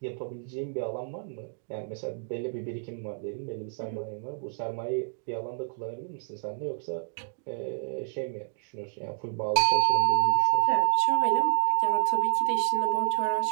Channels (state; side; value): silent; left; digital silence